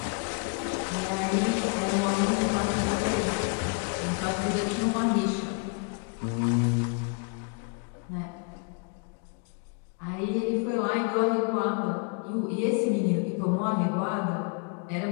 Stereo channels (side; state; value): right; quieter; 34.7 dB